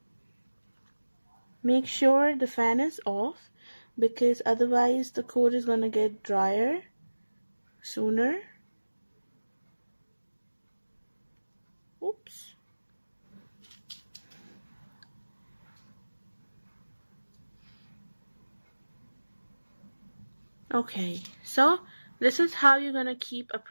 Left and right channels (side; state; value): both; inverted; correlation -1.00